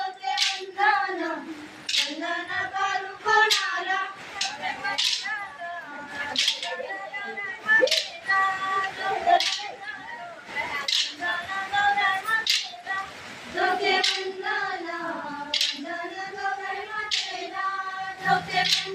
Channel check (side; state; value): both; identical; correlation 1.00